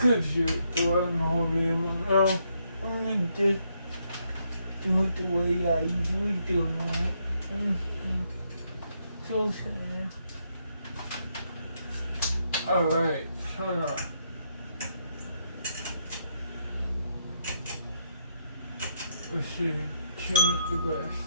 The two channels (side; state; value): both; inverted; correlation -0.76